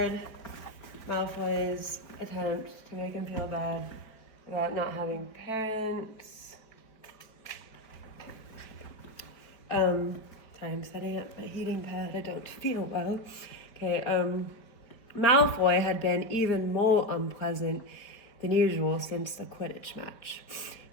Malfoy's attempt to make him feel bad about not having parents. Sorry, I'm setting up my heating pad. I don't feel well. Okay, Malfoy had been even more unpleasant than usual since the Quidditch match.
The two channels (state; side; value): late; right; 4.4 ms